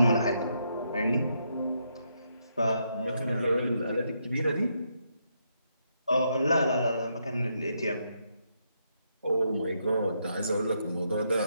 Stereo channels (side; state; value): both; inverted; correlation -0.78